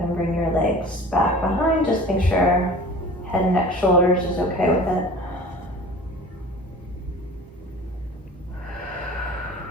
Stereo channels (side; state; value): both; normal; correlation 0.41